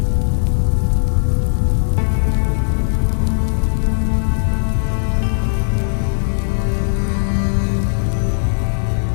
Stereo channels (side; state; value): right; silent; 61 dB below the other